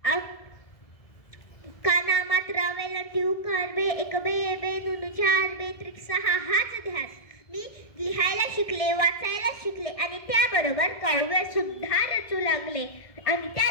काना मात्रा वेलांटी उकार बे एक बे बे नुनु चार बे त्रिक सहा हाच ध्यास. मी लिहायला शिकले, वाचायला शिकले आणि त्याबरोबर काव्य सुद्धा रचू लागले. आणि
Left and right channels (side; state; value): right; late; 1.7 ms